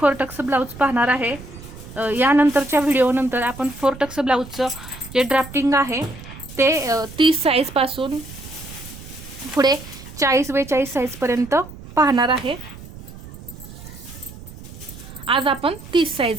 टक्स ब्लाउज पाहणार आहे। यानंतरच्या व्हिडिओनंतर आपण 4 टक्स ब्लाउजचं जे ड्राफ्टिंग आहे ते 30 साइज पासून पुढे 40-42 साइज पर्यंत पाहणार आहे। आज आपण 30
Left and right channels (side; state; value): right; noise; rumble, 15 dB below the sound